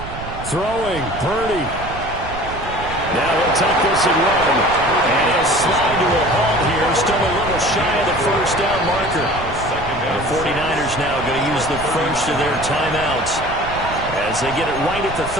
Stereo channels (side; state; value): right; noise; rumble, 11 dB below the sound